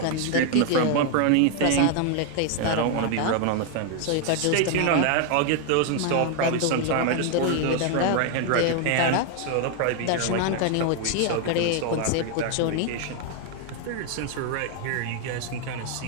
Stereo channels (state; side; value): different; both; correlation 0.00